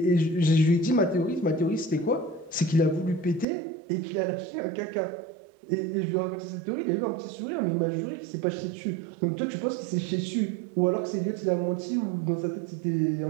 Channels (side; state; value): left; drops out; at 3.5 s